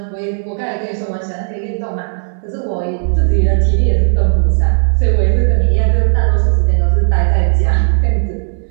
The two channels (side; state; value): left; silent; digital silence